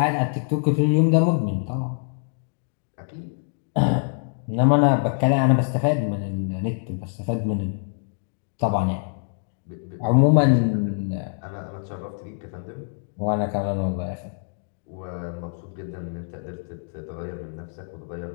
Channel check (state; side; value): silent; right; digital silence